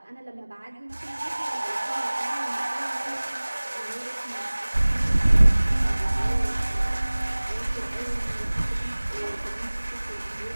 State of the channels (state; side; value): inverted; both; correlation -1.00